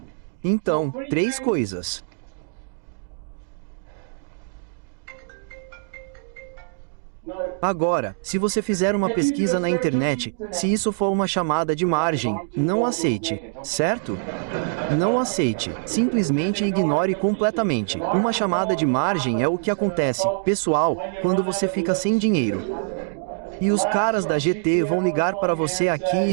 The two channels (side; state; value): left; silent; digital silence